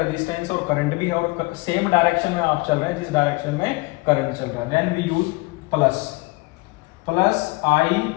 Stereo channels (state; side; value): quieter; right; 24.2 dB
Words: और करंट भी है और सेम डायरेक्शन में आप चल रहे हैं जिस डायरेक्शन में करंट चल रहा है। Then we use plus I